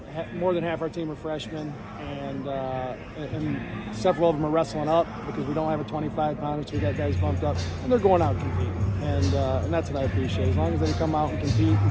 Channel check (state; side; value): identical; both; correlation 1.00